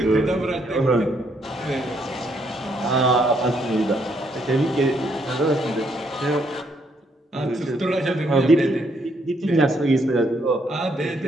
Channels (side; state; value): both; normal; correlation 0.72